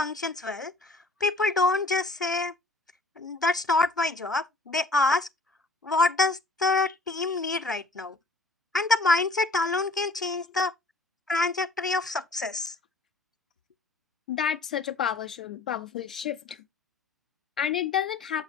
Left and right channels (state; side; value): quieter; right; 3.2 dB